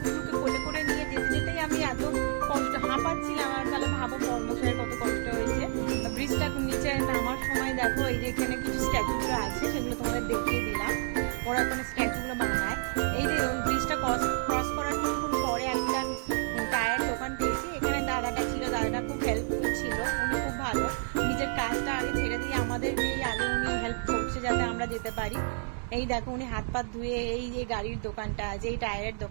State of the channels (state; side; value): silent; left; digital silence